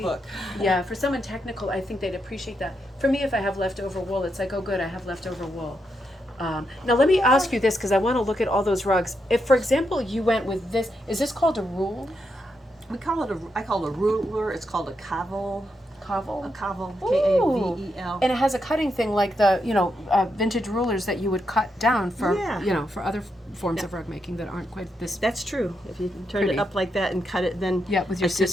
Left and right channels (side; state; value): both; normal; correlation 0.82